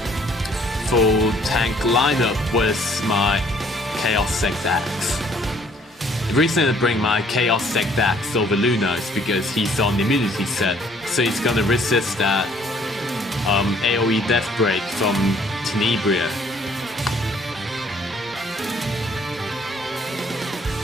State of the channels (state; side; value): normal; both; correlation 0.61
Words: Full tank lineup with my Chaos Sect Axe. The reason I bring my Chaos Sect Axe over Luna is because he's on the immunity set, so he's gonna resist that AoE Death Break from Tenebria.